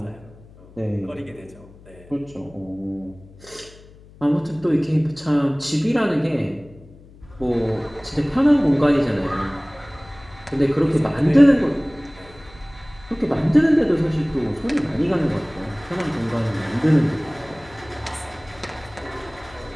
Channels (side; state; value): left; noise; hum, 23 dB below the sound